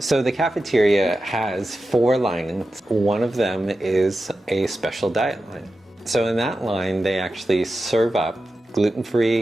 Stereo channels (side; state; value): both; normal; correlation 0.92